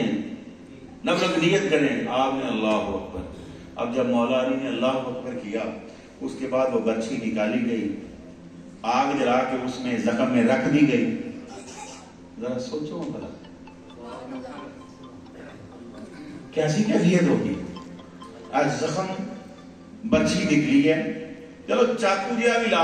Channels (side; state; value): both; identical; correlation 1.00